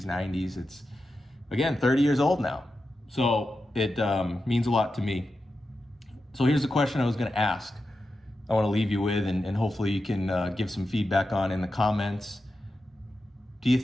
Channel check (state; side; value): normal; both; correlation 0.90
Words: 90s. It's, again, 30 years old now. So it means a lot to me. So here's the question I was going to ask. I want to leave you with, and hopefully you can give some feedback on in the comments. Do you